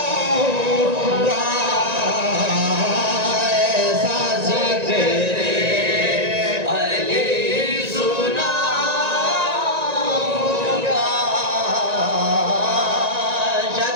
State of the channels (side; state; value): left; late; 1.9 ms